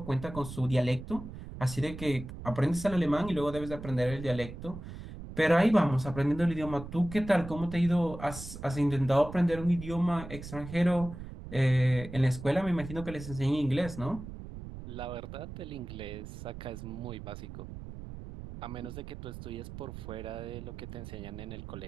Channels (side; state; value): right; noise; rumble, 11 dB below the sound